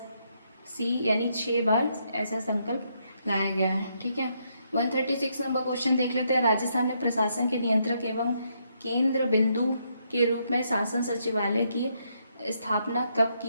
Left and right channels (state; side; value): inverted; both; correlation -0.76